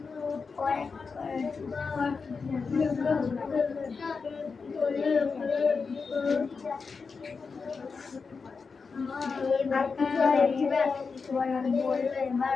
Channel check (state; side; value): quieter; right; 4.9 dB